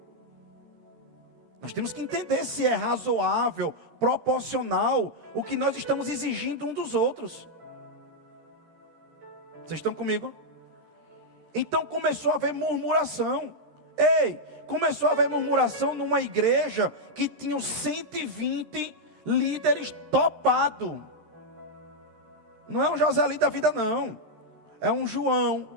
Nós temos que entender se é razoável, proporcional o que nós estamos exigindo um dos outros. Vocês estão comigo? Então começou a haver murmuração. Começou a haver murmuração numa igreja que tinha 120 líderes topados. Não é um Joselito da vida, não. É um João,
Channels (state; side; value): late; left; 13 ms